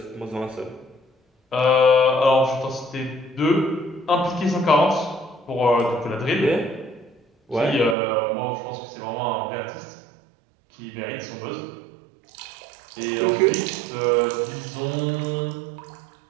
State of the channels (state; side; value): drops out; left; at 8.0 s